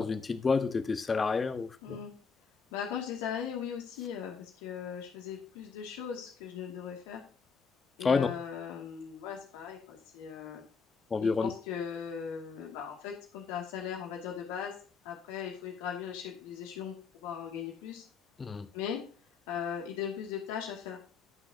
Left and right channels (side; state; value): right; quieter; 5.5 dB